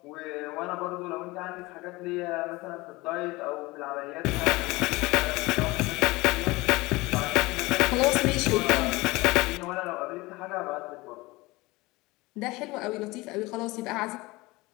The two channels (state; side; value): quieter; right; 21.9 dB